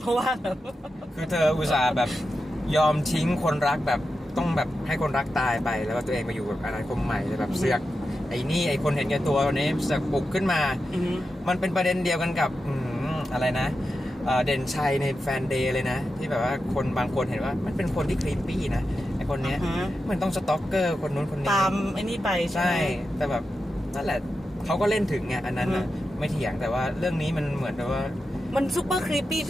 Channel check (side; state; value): both; normal; correlation 0.90